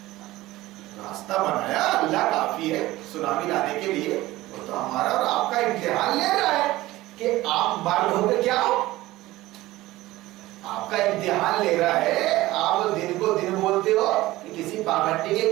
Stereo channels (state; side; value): quieter; left; 17.6 dB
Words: راستہ بنایا. اللہ کافی ہے سونامی لانے کے لیے. وہ تو ہمارا اور آپ کا امتحان لے رہا ہے کہ آپ مرد ہو کے کیا ہو. آپ کا امتحان لے رہا ہے. آپ دن کو دن بولتے ہو کہ کسی پاگھنڈی کے